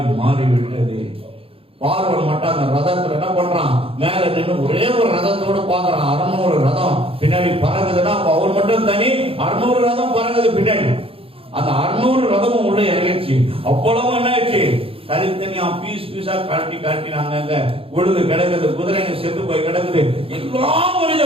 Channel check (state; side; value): late; left; 0.27 ms